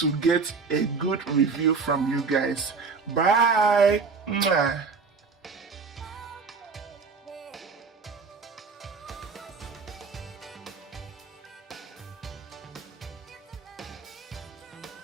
get a good review from you guys. Bye. Mwah.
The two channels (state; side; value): quieter; left; 4.9 dB